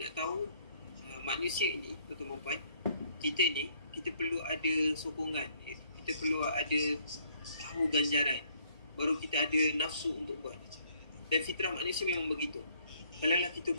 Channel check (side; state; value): both; inverted; correlation -0.65